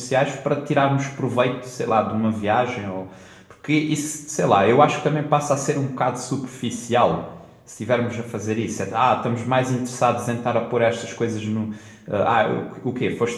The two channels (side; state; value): both; identical; correlation 1.00